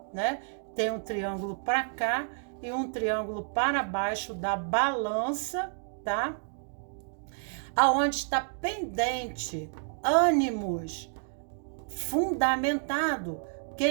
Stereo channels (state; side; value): silent; left; 58 dB below the other